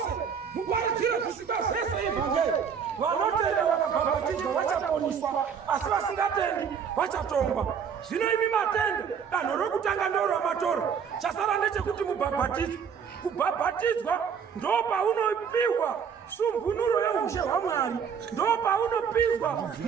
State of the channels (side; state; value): left; quieter; 7.1 dB